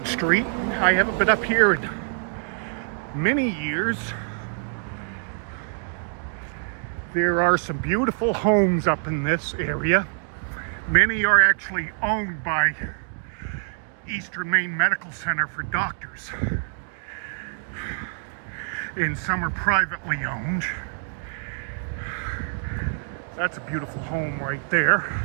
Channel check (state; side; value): silent; left; digital silence